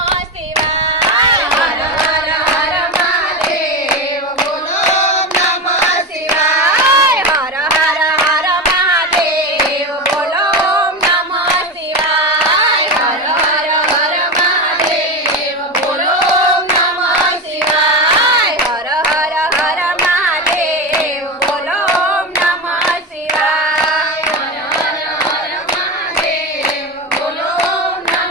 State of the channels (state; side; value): normal; both; correlation 0.19